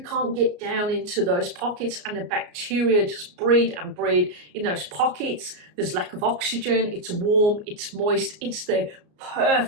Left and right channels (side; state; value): left; late; 34 ms